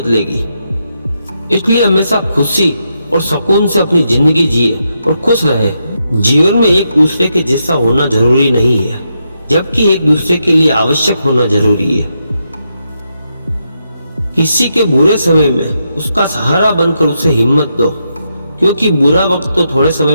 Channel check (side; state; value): both; inverted; correlation -0.83